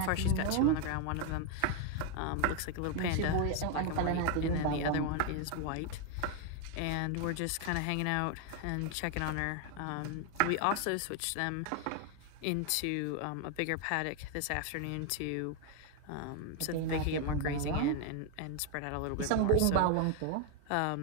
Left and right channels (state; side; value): different; both; correlation 0.01